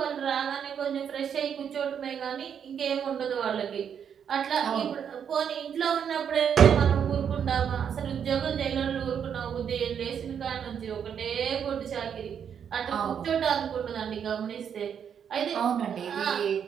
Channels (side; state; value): left; quieter; 8.0 dB